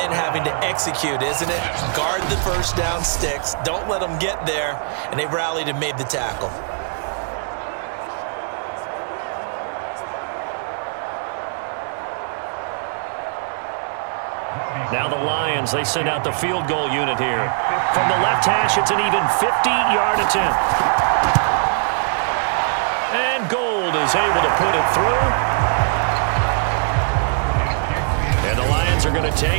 having to execute, isn't it? Guard the first down sticks. Don't let them get there. And they rallied and made the tackle. Now the Lions, they send out the field goal unit here. From the left hash, it's an even 50-yard attempt. And Gold is able to put it through. And the Lions are going to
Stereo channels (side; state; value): left; silent; digital silence